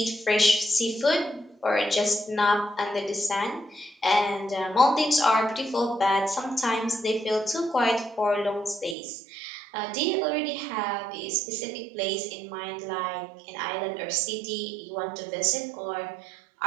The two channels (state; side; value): drops out; left; at 9.0 s